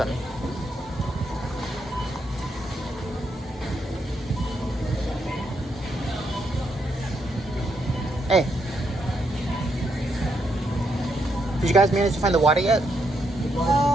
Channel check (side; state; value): both; normal; correlation 0.78